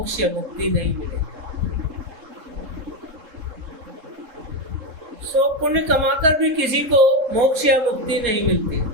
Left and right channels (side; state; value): left; late; 3.7 ms